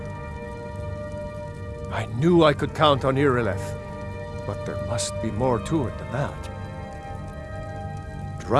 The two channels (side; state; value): both; identical; correlation 1.00